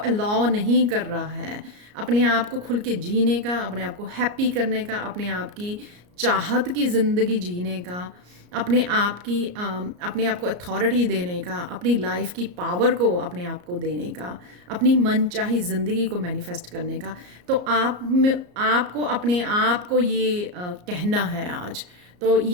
नहीं कर रहा है अपने आप को खुल के जीने का, अपने आप को हैप्पी करने का, अपने आप की चाहत की ज़िंदगी जीने का, अपने आप को अथॉरिटी देने का, अपनी लाइफ की पावर को अपने आप को देने का, अपनी मनचाही ज़िंदगी को मैनिफेस्ट करने का। तो आपको अपने आप को ये कहना है आज। तो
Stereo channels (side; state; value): left; late; 34 ms